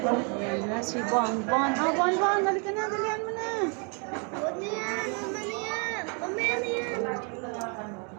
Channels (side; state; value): left; quieter; 36.6 dB